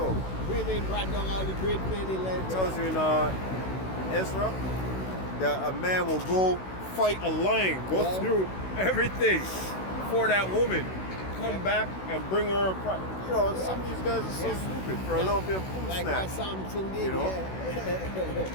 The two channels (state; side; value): late; right; 16 ms